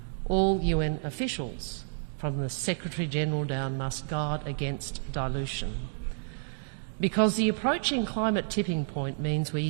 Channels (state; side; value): silent; left; digital silence